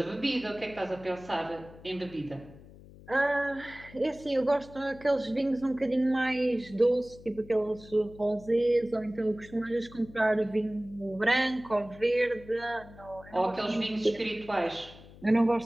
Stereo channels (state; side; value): noise; left; hum, 20 dB below the sound